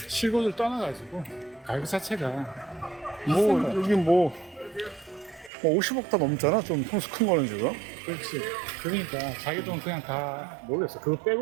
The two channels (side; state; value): left; drops out; at 5.5 s